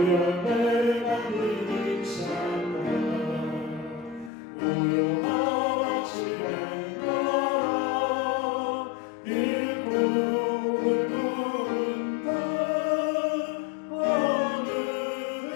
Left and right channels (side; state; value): right; drops out; at 4.3 s